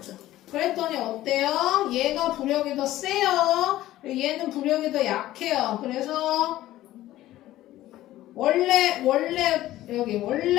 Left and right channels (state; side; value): quieter; right; 14.9 dB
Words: 그랬더니 어때요? 얘가 부력이 더 세요. 얘는 부력이 더 약해요. 그래서 원래